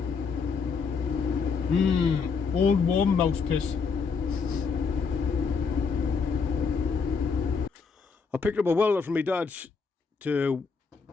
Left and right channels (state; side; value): quieter; right; 5.3 dB